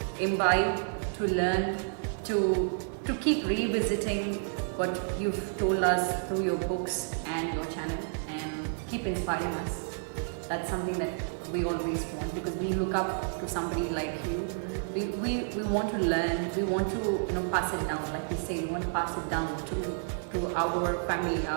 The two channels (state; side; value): silent; left; 58 dB below the other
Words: imbibe, to learn, to keep revisiting what you've told us through your books and your channel, and keep inspiring us. That's something that we always want, because we look up to somebody like you. We want to learn, we want to pass it down, like you say, we want to pass it down to our family,